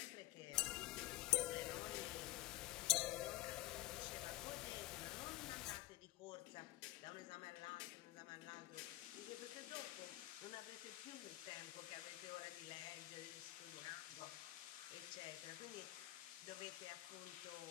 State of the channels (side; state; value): right; quieter; 16.6 dB